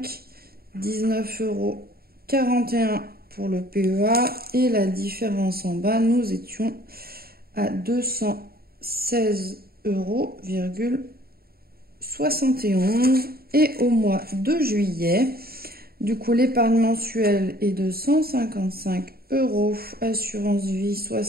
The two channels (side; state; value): left; late; 0.44 ms